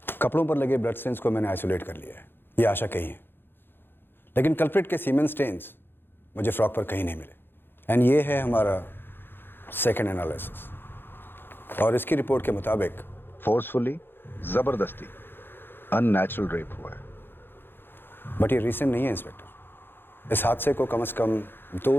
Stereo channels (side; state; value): right; late; 0.10 ms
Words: कपड़ों पर लगे ब्लड स्टेन्स को मैंने आइसोलेट कर लिया है, ये आशा कही है, लेकिन कल्प्रिट के सीमेन स्टेन्स मुझे फ्रॉक पर कहीं नहीं मिले। एंड ये है हमारा सेकंड एनालिसिस, और इसकी रिपोर्ट के मुताबिक फोर्सफुली, जबरदस्ती, अननेचुरल रेप हुआ है। बट ये रीसेंट नहीं है इंस्पेक्टर, इस हादसे को कम से कम